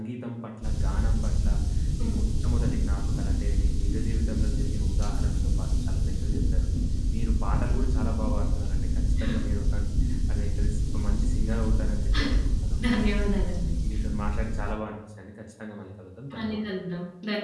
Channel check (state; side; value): identical; both; correlation 1.00